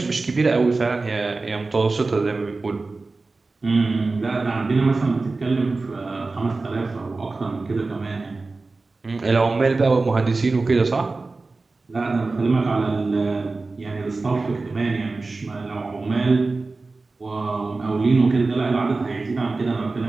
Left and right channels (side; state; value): left; quieter; 3.6 dB